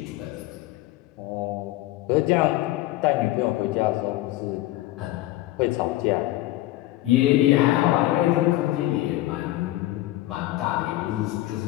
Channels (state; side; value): quieter; right; 16.5 dB